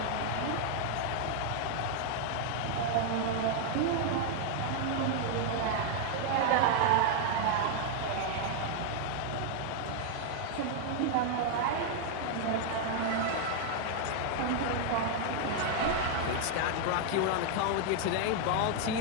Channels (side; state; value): both; different; correlation 0.00